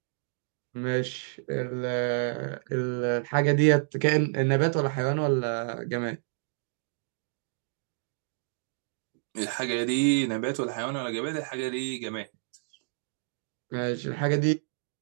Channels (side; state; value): left; silent; digital silence